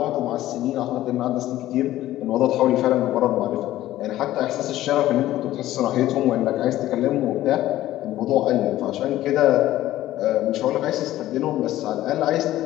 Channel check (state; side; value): quieter; right; 14.5 dB